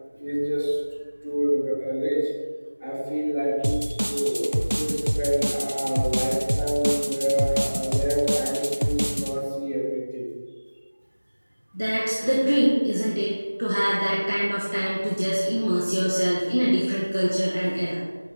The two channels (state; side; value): inverted; both; correlation -1.00